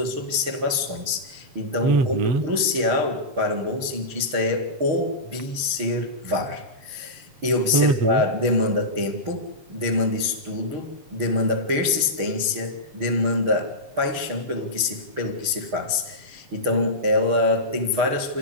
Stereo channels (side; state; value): left; late; 6.5 ms